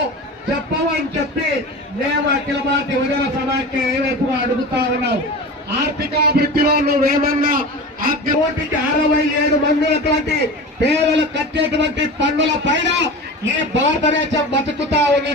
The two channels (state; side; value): normal; both; correlation 0.31